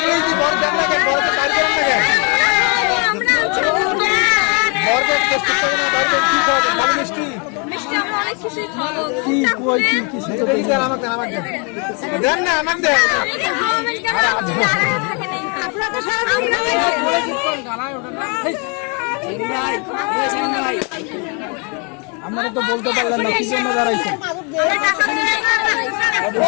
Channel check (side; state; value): right; quieter; 35.3 dB